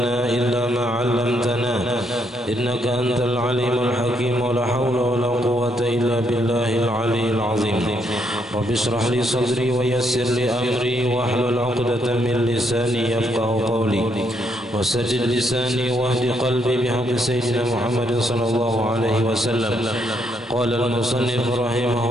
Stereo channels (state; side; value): normal; both; correlation 0.74